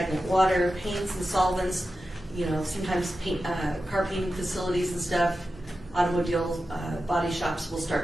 water, paints and solvents, you know, sometimes car painting facilities and stuff, automobile body shops will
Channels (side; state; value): both; normal; correlation 0.92